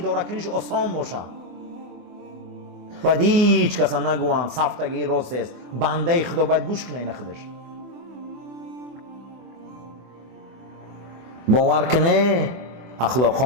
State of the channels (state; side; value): late; left; 24 ms